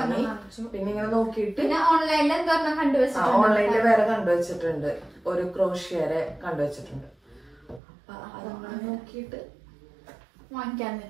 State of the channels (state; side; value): drops out; left; at 7.8 s